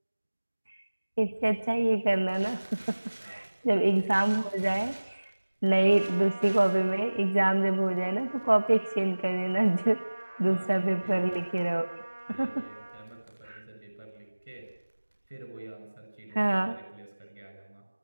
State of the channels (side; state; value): both; inverted; correlation -1.00